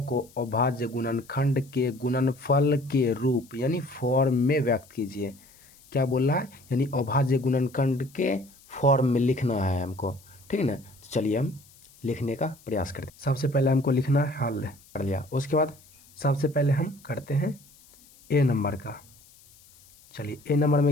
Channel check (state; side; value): noise; left; hiss, 26 dB below the sound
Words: को अभाज्य गुणनखंड के गुणनफल के रूप यानी फॉर्म में व्यक्त कीजिए। क्या बोल रहा है? यानी अभाज्य गुणनखंड के फॉर्म में लिखना है हमको, ठीक है ना। तो चलिए हम लिखने का प्रयास करते हैं। सबसे पहले हमको लिखना है हल, कर लिया। उसके बाद सबसे पहले हम करते हैं ए नंबर का। चलिए ए नंबर